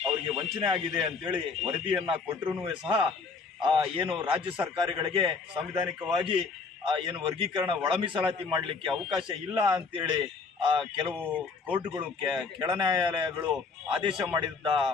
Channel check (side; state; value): right; quieter; 4.7 dB